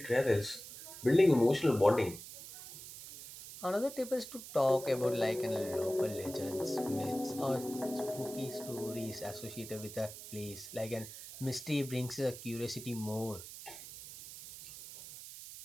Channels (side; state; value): right; noise; hiss, 13 dB below the sound